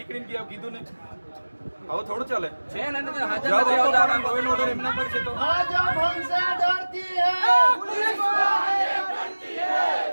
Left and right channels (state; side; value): inverted; both; correlation -1.00